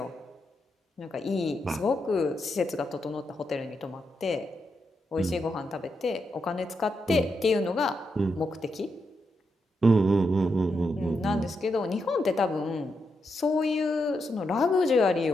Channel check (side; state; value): both; normal; correlation 0.83